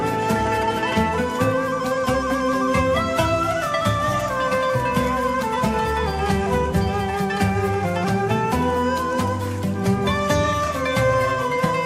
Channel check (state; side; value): identical; both; correlation 1.00